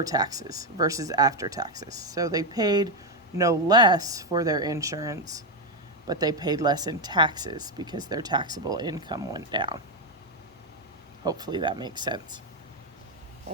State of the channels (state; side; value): normal; both; correlation 0.05